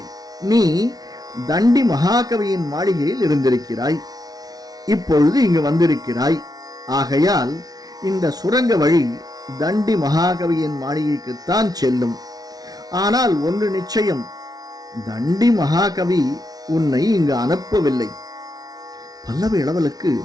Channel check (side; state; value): left; late; 0.19 ms